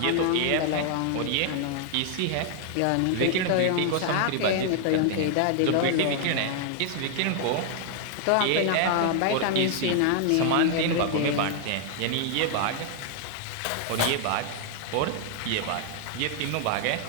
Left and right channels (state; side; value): different; both; correlation 0.00